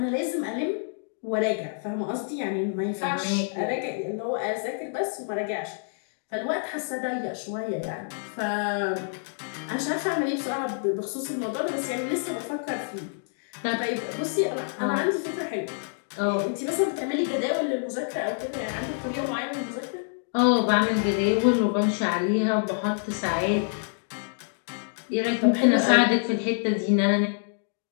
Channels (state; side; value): silent; right; digital silence